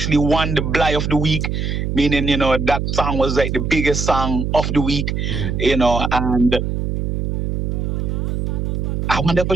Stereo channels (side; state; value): right; noise; hum, 1 dB below the sound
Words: won the Bly of the week, meaning that song was like the biggest song of the week, and I wonder if I